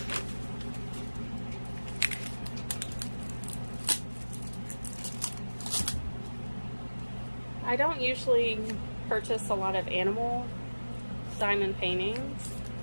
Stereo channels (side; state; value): both; inverted; correlation -1.00